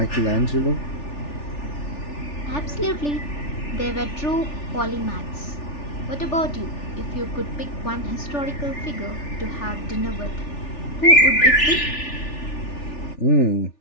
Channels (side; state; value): right; late; 3.4 ms